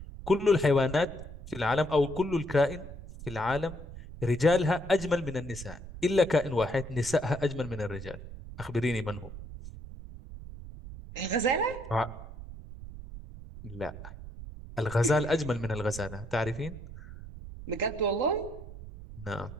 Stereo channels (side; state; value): right; noise; rumble, 13 dB below the sound